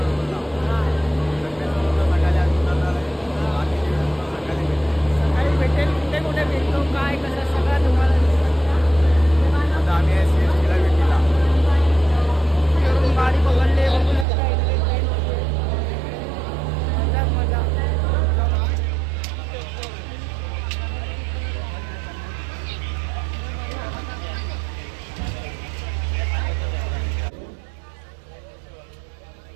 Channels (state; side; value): drops out; left; at 14.2 s